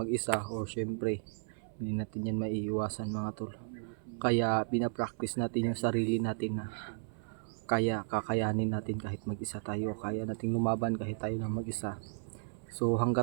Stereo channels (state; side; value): silent; left; 55 dB below the other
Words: o syempre hindi natin yan maiiwasan mga tol. Kaya pinapractice natin yung sarili natin na kakayanin natin kahit mag-isa tayo, kaya nating lumaban kahit tayo lang mag-isa. So